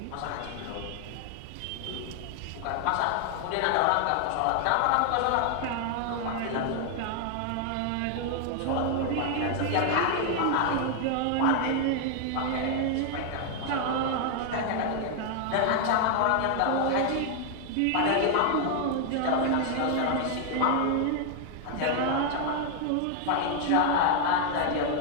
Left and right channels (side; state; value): both; different; correlation 0.00